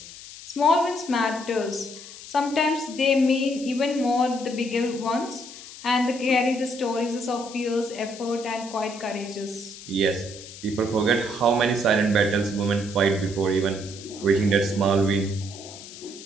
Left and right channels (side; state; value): left; noise; hiss, 15 dB below the sound